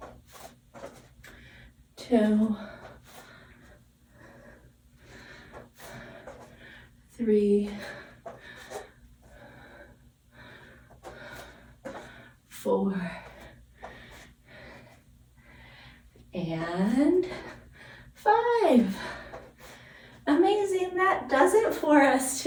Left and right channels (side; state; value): both; identical; correlation 1.00